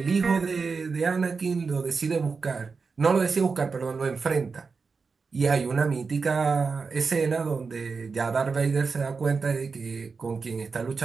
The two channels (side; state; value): left; quieter; 4.8 dB